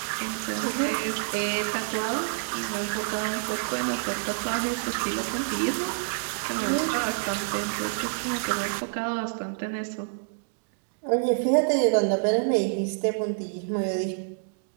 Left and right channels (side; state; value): left; silent; digital silence